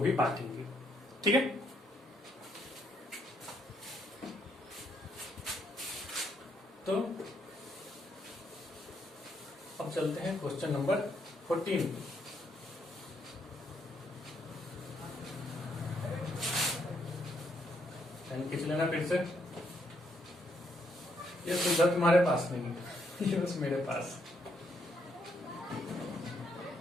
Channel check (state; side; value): normal; both; correlation 0.74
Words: बांटेंगे। ठीक है, तो अब चलते हैं क्वेश्चन नंबर 14। खींच लेना फिर से, ये सुविधा तुम्हारे पास नहीं है, ये बस मेरे पास।